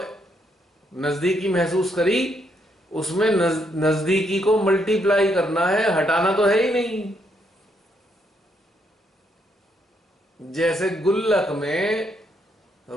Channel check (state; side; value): normal; both; correlation 0.75